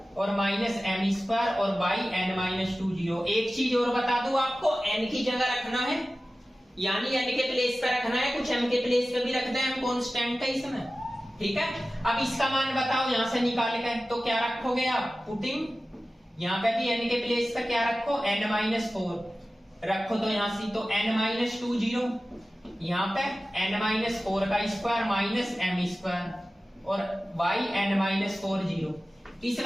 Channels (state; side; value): normal; both; correlation 0.95